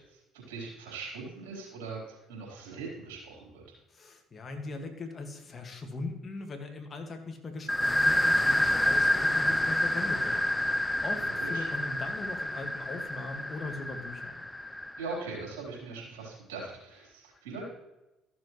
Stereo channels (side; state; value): both; normal; correlation 0.93